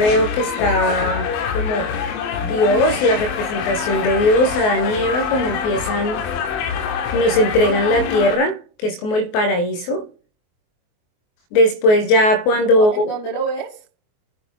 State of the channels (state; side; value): late; right; 24 ms